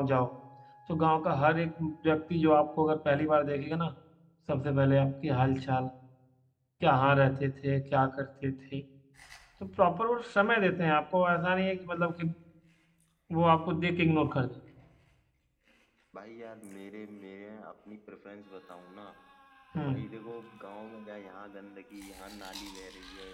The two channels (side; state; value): both; identical; correlation 1.00